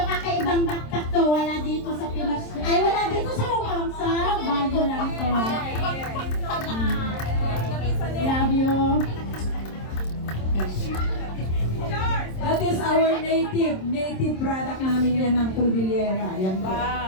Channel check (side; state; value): right; late; 27 ms